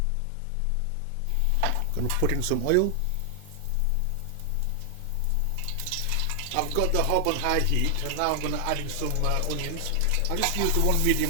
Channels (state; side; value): different; both; correlation 0.00